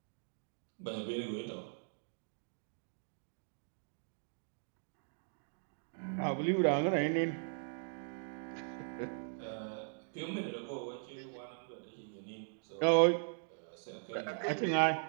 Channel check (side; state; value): left; silent; digital silence